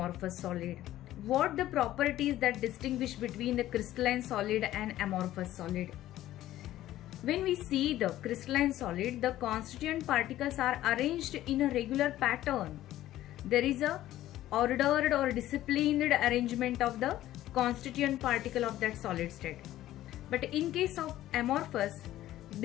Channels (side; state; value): right; quieter; 14.1 dB